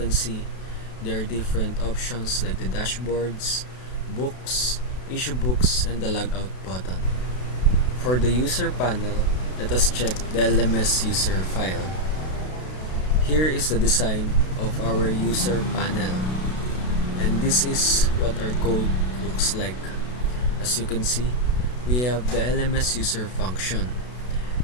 see, there are different options like the dashboards, books, issue books, and the logout button. For the user panel, let us check the LMS user file. Here is the design of our user panel, and this is what our code looks like. As you can see, we have the LMS user function,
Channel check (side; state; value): right; late; 32 ms